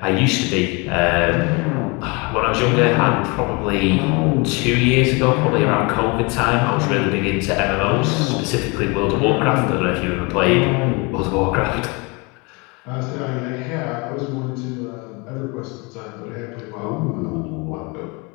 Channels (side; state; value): right; quieter; 28.7 dB